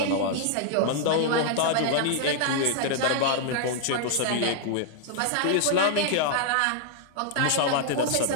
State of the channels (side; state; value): both; different; correlation -0.01